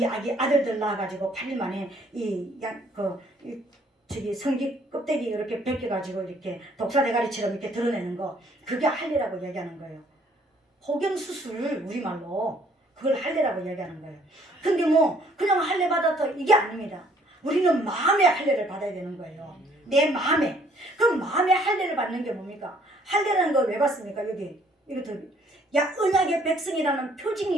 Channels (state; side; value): normal; both; correlation 0.62